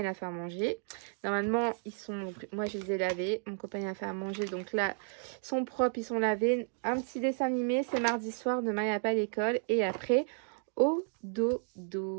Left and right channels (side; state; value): left; silent; 56 dB below the other